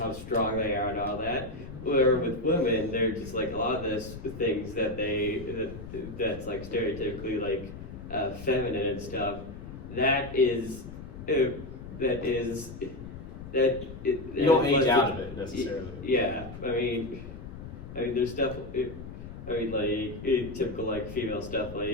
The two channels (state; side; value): noise; left; rumble, 12 dB below the sound